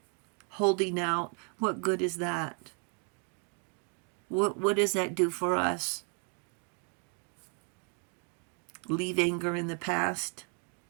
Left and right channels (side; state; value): left; quieter; 39.5 dB